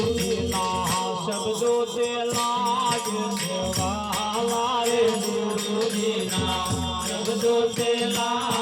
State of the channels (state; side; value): identical; both; correlation 1.00